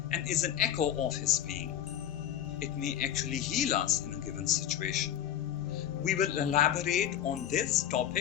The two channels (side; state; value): right; quieter; 10.8 dB